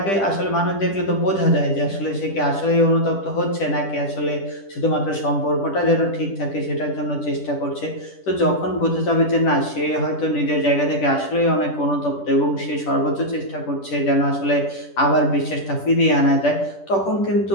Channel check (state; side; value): late; right; 10 ms